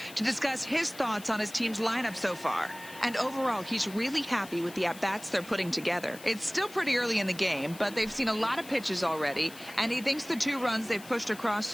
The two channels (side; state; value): left; noise; hiss, 18 dB below the sound